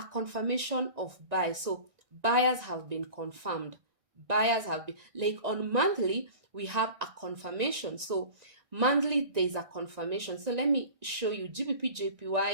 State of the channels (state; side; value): late; left; 1.9 ms